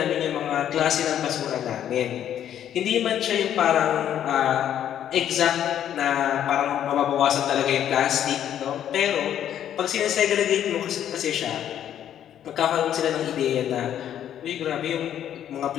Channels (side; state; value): right; quieter; 10.3 dB